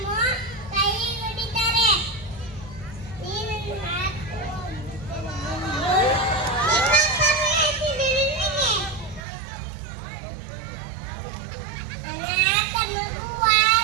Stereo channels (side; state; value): left; drops out; at 9.2 s